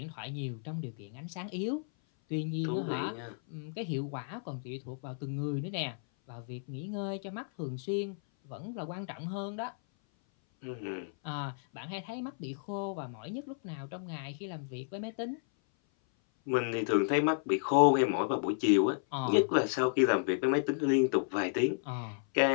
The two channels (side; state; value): right; silent; 56 dB below the other